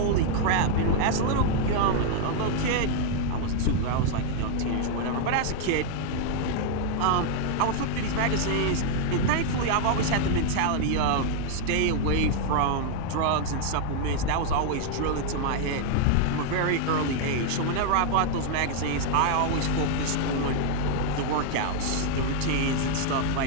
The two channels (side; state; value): both; different; correlation 0.00